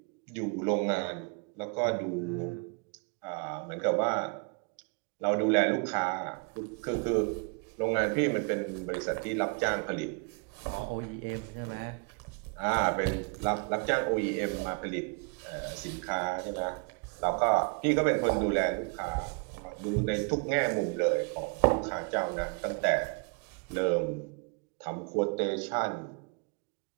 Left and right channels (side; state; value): left; quieter; 34.0 dB